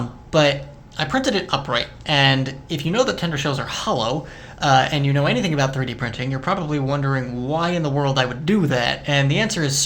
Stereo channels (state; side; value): identical; both; correlation 1.00